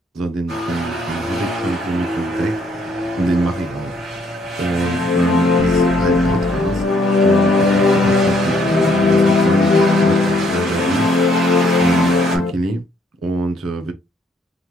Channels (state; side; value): normal; both; correlation 0.68